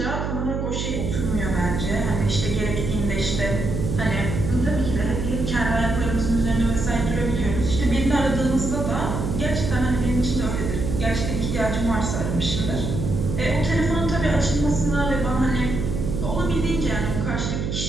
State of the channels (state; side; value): noise; right; hum, 2 dB below the sound